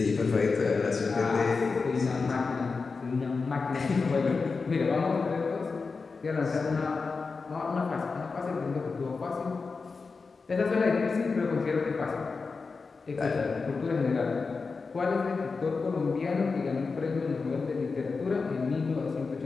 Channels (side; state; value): right; quieter; 4.5 dB